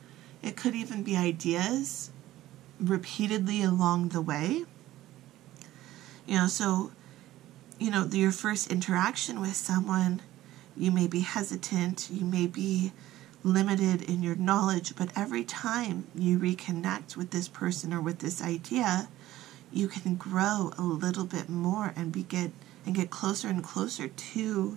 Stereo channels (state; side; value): quieter; left; 15.2 dB